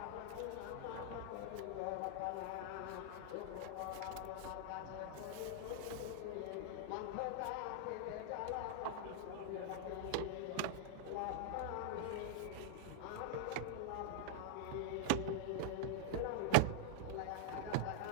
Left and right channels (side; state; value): both; different; correlation -0.02